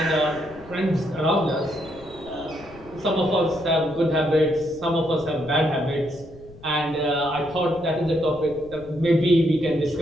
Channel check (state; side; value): noise; left; rumble, 21 dB below the sound